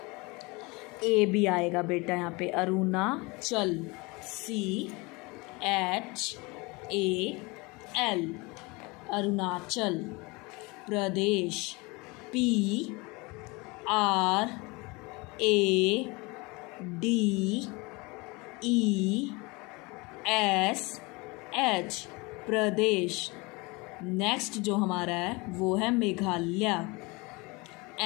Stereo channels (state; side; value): quieter; right; 25.8 dB